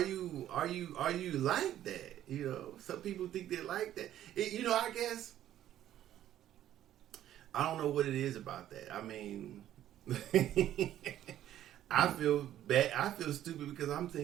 you like that? You know, some people think they like that. You know, I guess I don't know what it is about that. I mean, I feel bad. I feel stupid because I'm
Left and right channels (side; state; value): left; quieter; 12.1 dB